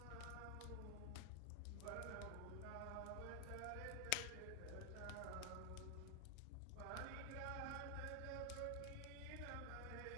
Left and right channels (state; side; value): different; both; correlation 0.00